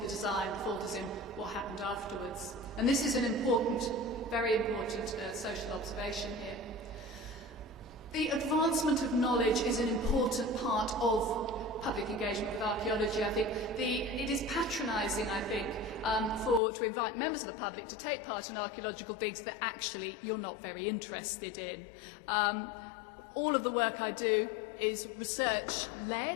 the design, the fault is in what happened afterwards. And this is an important, very important social observation here. The advancement of knowledge is an important part of public engagement with archaeology. I think it is patronising, I think, to invite members of the public to take part in archaeological digs that actually you're not very interested in. All of the work I do is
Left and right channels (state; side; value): drops out; right; at 16.6 s